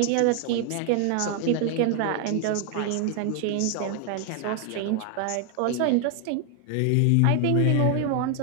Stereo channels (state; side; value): different; both; correlation 0.00